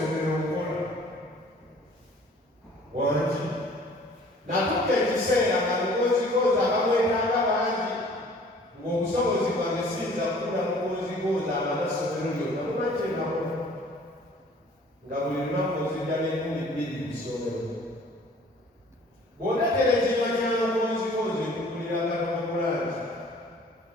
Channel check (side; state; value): both; normal; correlation 0.52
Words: okukola wangi natuka ekiseera nga lukozikozi abamwetanga bangi ng'obusobozi bwange siyinza kukula mukozikozi abanasomero lyonna lumakyengakola nga buli lunaku nzijja n'2,000 ku ssomero bw'otatera ekinywa ky'amakozikozi ekukulira katomakulangi